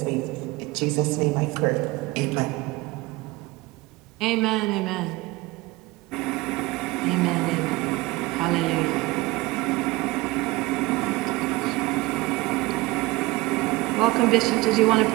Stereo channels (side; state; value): left; quieter; 20.8 dB